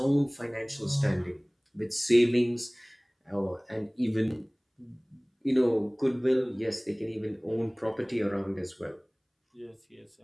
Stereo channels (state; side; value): identical; both; correlation 1.00